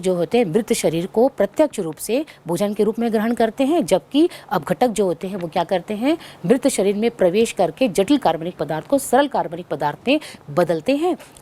होते हैं मृत शरीर को प्रत्यक्ष रूप से भोजन के रूप में ग्रहण करते हैं, जबकि अपघटक जो होते हैं वो क्या करते हैं? मृत शरीर में प्रवेश करके जटिल कार्बनिक पदार्थ को सरल कार्बनिक पदार्थ में बदलते हैं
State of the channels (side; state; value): both; identical; correlation 1.00